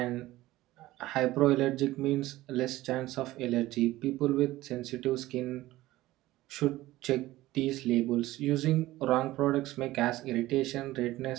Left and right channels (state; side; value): quieter; left; 16.9 dB